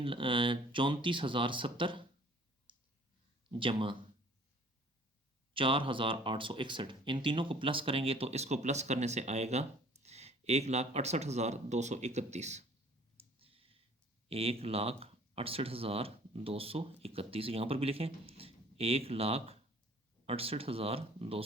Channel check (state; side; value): normal; both; correlation 0.53